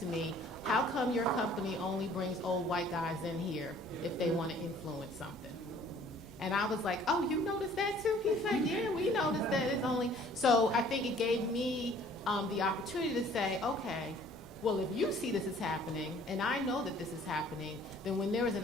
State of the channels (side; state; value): both; normal; correlation 0.55